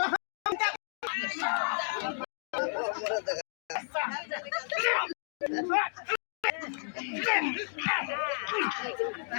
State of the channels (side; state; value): right; silent; 56 dB below the other